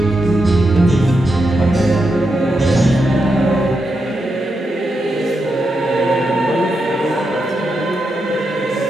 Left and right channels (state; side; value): normal; both; correlation 0.85